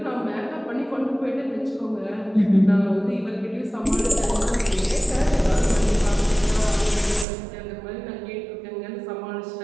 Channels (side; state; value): left; drops out; at 7.2 s